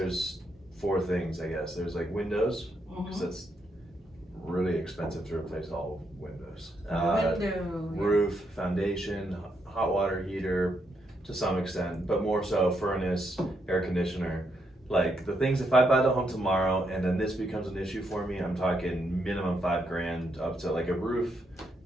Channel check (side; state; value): both; normal; correlation 0.78